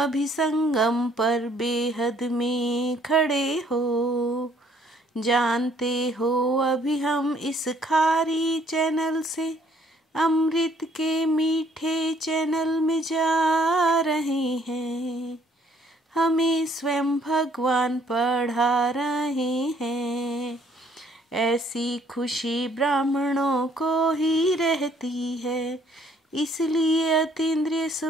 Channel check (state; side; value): normal; both; correlation 0.63